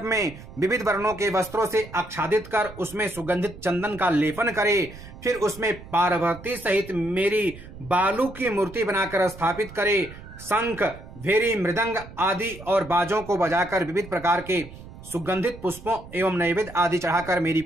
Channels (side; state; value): right; noise; rumble, 16 dB below the sound